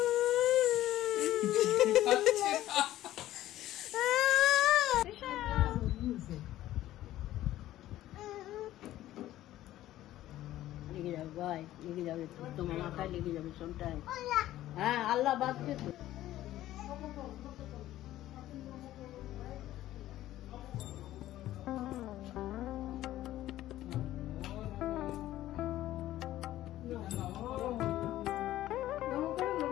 जाओ भाई, लेके जाओ तुम्हारा माथा लेके जाओ सोमटाइम। हाँ अल्लाह बात के तो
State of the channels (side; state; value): right; quieter; 14.2 dB